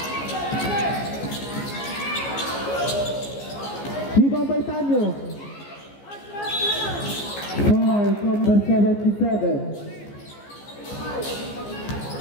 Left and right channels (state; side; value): late; right; 14 ms